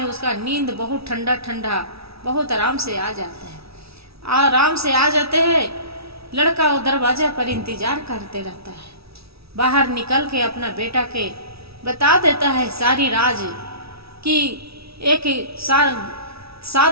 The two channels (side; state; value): left; late; 0.77 ms